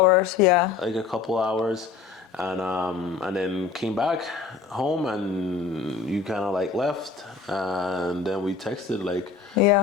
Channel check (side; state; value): right; quieter; 5.3 dB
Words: yeah, like a couple hours, and then came back home, and you kind of like left, and then we texted like